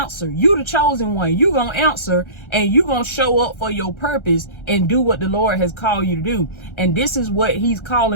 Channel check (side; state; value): right; late; 1.3 ms